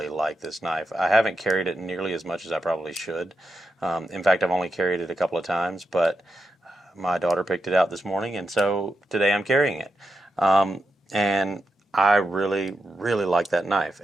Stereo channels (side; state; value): both; normal; correlation 0.86